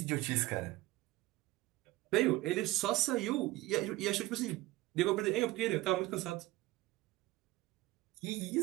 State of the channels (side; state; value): left; quieter; 18.3 dB